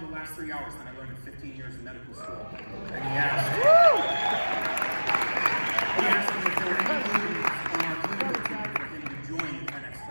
the last 3 hours than I learned in 15 years in medical school. And he asked me if there were any openings on our clinical team for him to join the 10X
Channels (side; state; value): both; inverted; correlation -1.00